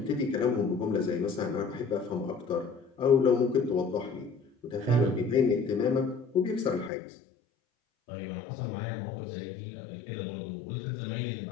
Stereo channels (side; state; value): right; drops out; at 6.9 s